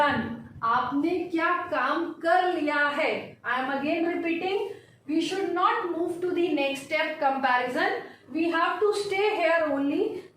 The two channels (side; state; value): both; identical; correlation 1.00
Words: आपने क्या काम कर लिया है. I am again repeating, we should not move to the next step comparison. We have to stay here only,